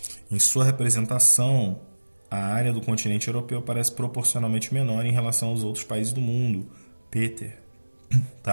Em sua representação, a área do continente europeu parece proporcionalmente menor em relação aos outros países do mundo. Peter.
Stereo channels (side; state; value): both; inverted; correlation -1.00